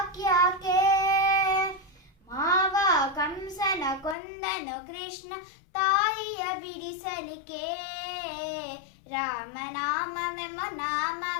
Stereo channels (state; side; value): drops out; right; at 4.2 s